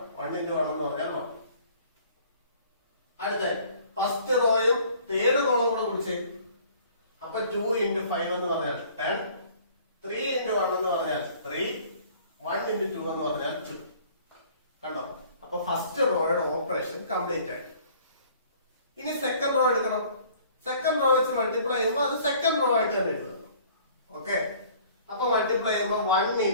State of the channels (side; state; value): both; inverted; correlation -0.53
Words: എന്ന് പറഞ്ഞാൽ 1. അടുത്ത ഫസ്റ്റ് റോയും തേർഡ് കോളം കൂടെ വിളിച്ചേ. അപ്പൊ 2 into 5 എന്ന് പറഞ്ഞാൽ 10. 3 into 1 എന്ന് പറഞ്ഞാൽ 3. 1 into 2 എന്ന് പറഞ്ഞാൽ 2. കണ്ടോ? അപ്പൊ ഫസ്റ്റ് റോയുടെ ഓപ്പറേഷൻ കംപ്ലീറ്റ് ആയി. ഇനി സെക്കൻഡ് റോ എടുക്കണം. സെക്കൻഡ് റോ വെച്ച് മൾട്ടിപ്ലൈ ചെയ്യുമ്പോൾ അത് സെക്കൻഡ് റോ ആയിട്ട് തന്നെ എഴുതണം. ഓക്കെ, അപ്പൊ മൾട്ടിപ്ലൈ ചെയ്യുമ്പോൾ 1